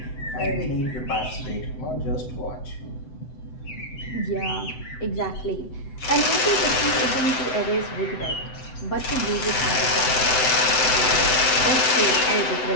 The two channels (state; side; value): late; right; 7.9 ms